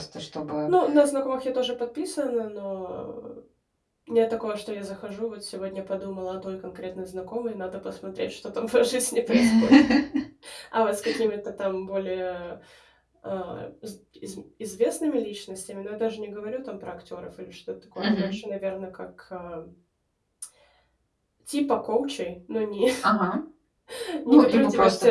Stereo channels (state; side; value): identical; both; correlation 1.00